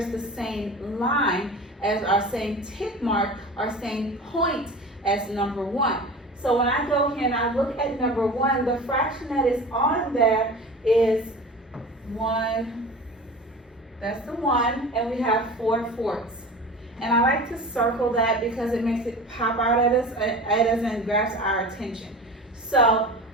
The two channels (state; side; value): normal; both; correlation 0.36